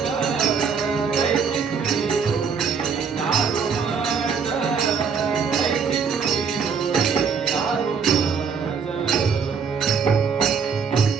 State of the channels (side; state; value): left; quieter; 6.0 dB